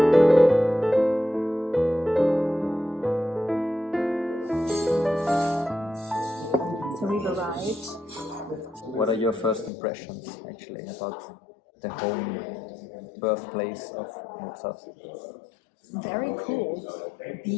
So we've arrived. What are your first impressions, actually, about the home birthplace of Mozart? Very cool.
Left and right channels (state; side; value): drops out; right; at 9.7 s